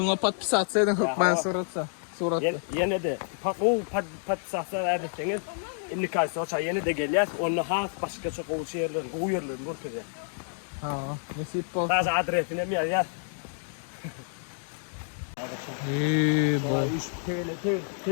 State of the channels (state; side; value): silent; right; digital silence